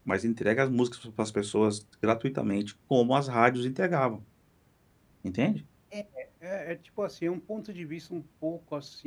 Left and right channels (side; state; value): both; identical; correlation 1.00